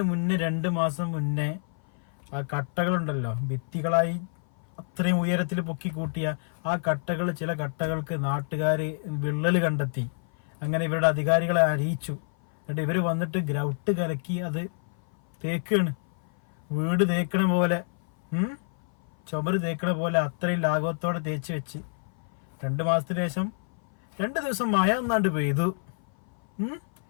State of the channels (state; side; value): silent; right; 56 dB below the other